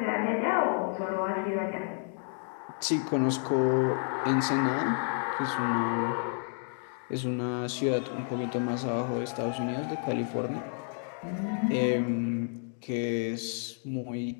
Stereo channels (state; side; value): silent; right; 57 dB below the other